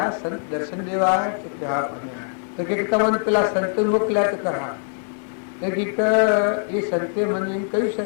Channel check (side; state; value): right; silent; 64 dB below the other